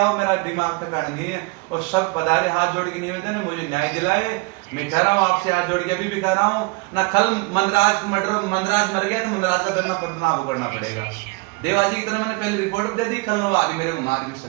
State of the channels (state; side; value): quieter; left; 27.9 dB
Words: हो, मेरा दिमाग तक नहीं है, और सब पधारे, हाथ जोड़ के निवेदन है, मुझे न्याय दिलाए। मैं कह रहा हूँ आपसे हाथ जोड़ के, अभी भी कह रहा हूँ ना, कल मंदराज मर गया तो मंदराज का दंडना पदनाभ करना पड़ेगा। देवाजी की तरह मैंने पहले रिपोर्ट दे दी, कल आगे मेरे को मार भी